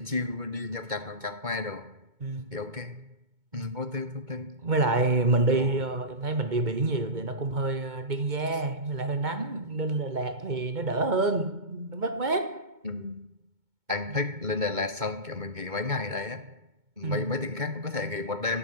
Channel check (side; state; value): left; late; 2.2 ms